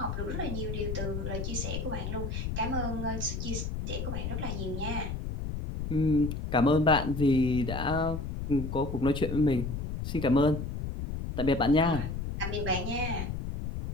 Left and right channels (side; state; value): left; noise; rumble, 4 dB below the sound